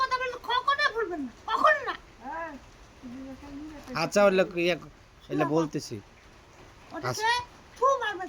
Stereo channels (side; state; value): both; identical; correlation 1.00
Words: কথা বললে কখনো ভুলবেন না, কখনো না। আচ্ছা এলে বলতেছি। ওটাকে থু মারবে,